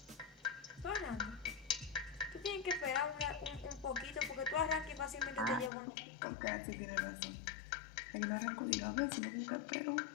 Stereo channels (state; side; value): drops out; right; at 5.7 s